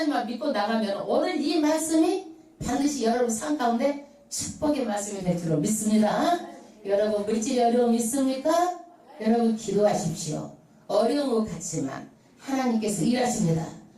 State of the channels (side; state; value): both; identical; correlation 1.00